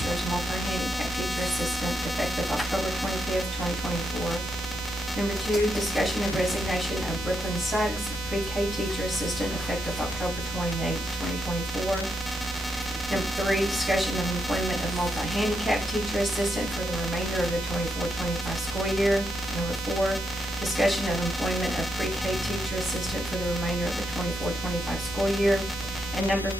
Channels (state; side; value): normal; both; correlation 0.81